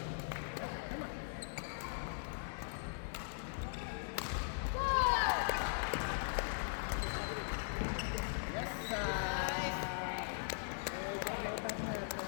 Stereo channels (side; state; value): right; silent; 51 dB below the other